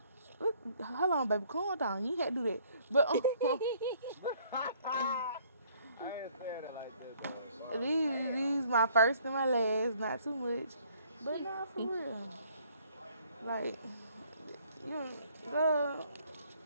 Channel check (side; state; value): both; inverted; correlation -0.61